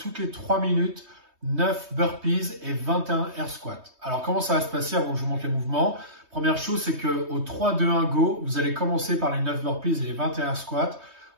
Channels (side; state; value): left; late; 3.2 ms